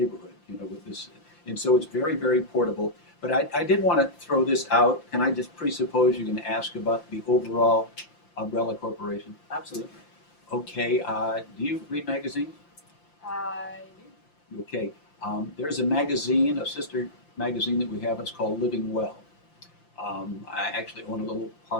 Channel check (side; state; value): right; late; 5.8 ms